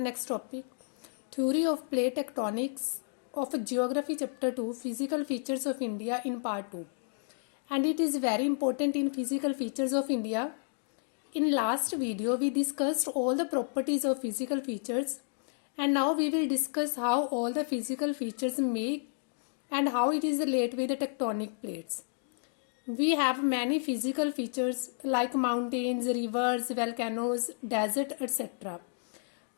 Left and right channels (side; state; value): right; silent; digital silence